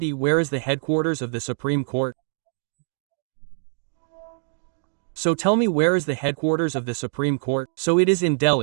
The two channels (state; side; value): silent; left; digital silence